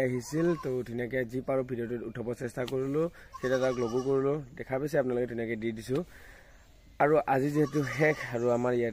আহিছিল তো ধুনীয়াকৈ যি পাৰোঁ ভিডিঅ'টো উঠাব চেষ্টা কৰিলোঁ সেইটা তাক লগো কৰিলোঁ দেখা পাইছে আপোনালোকে ধুনীয়াকৈ দি দিছোঁ আৰু আজি যেহেতু শেষ আৰু আমাৰ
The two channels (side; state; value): both; identical; correlation 1.00